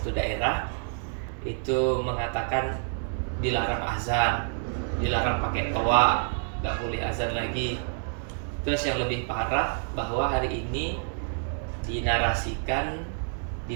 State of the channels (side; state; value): left; silent; 59 dB below the other